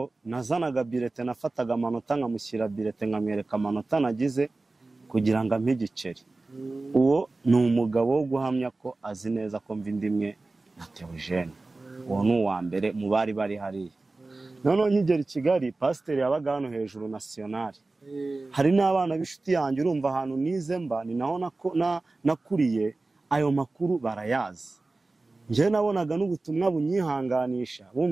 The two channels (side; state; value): left; quieter; 3.3 dB